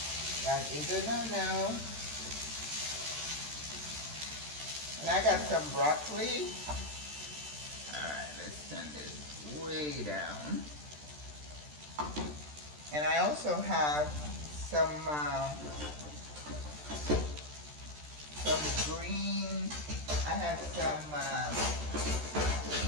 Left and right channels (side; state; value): left; late; 13 ms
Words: That is a no-no. And I got some broccoli. Alright, let's turn this way down. And I also have some green, I have some